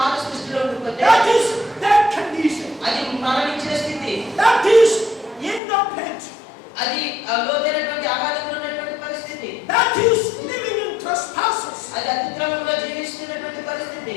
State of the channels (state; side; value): drops out; right; at 5.6 s